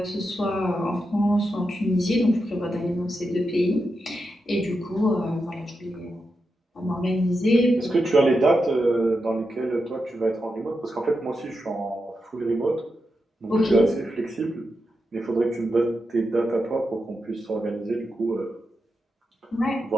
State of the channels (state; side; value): normal; both; correlation 0.87